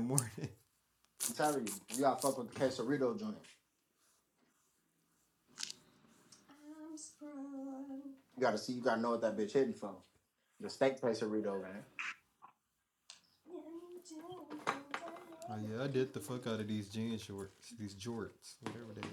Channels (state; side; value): identical; both; correlation 1.00